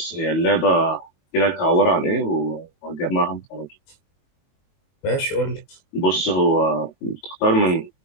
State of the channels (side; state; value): right; late; 22 ms